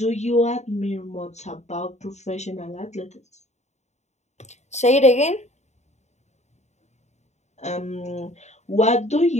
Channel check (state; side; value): late; right; 0.33 ms